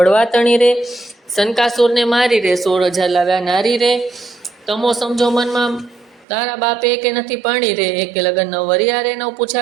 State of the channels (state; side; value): drops out; left; at 6.2 s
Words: તણી રે, શનકાસુરને મારી રે, 16,000 લાવ્યા નારી રે, તમો સમજો મનમાં તારા બાપે એકે નથી પાણી રે, એકે લગન ન વર્યા રે, ન